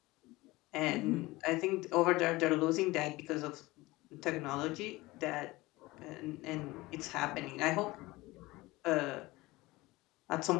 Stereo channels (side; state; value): right; quieter; 20.4 dB